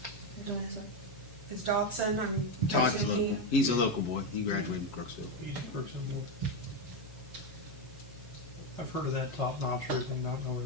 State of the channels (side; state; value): both; normal; correlation 0.08